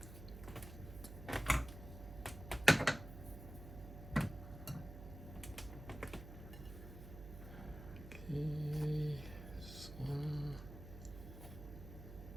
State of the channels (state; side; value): noise; right; hum, 12 dB below the sound